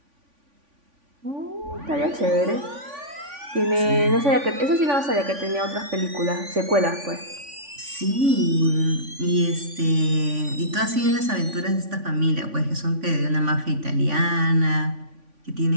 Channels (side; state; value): left; late; 3.5 ms